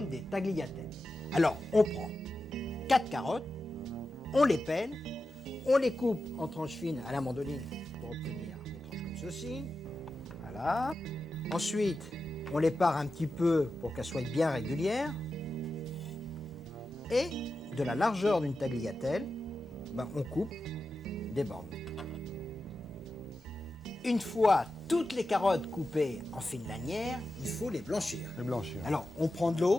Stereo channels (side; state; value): both; normal; correlation 0.91